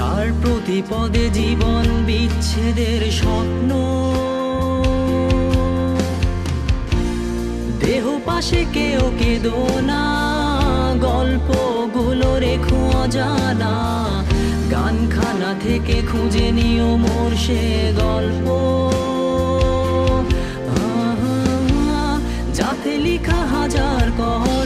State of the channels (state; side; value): identical; both; correlation 1.00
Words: প্রতি পদে জীবন বিচ্ছেদের স্বপ্ন। দেহ পাশে কেউ কেঁদো না, গল্পগুলো রেখো অজানা, গানখানা থেকে খুঁজে নিও মোর সে গল্প, যাতে লিখা হাজার